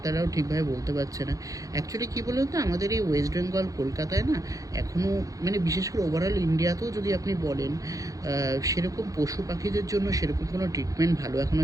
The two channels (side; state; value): left; late; 0.17 ms